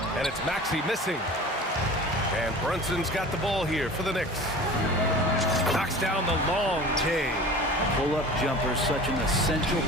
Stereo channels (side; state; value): both; normal; correlation 0.39